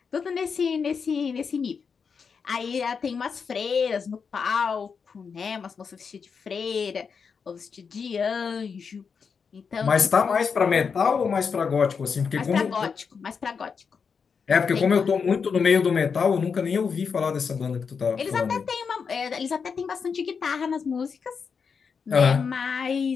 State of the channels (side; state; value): right; quieter; 5.9 dB